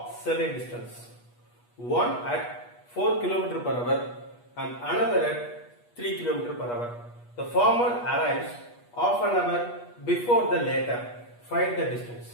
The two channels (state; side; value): late; right; 8.3 ms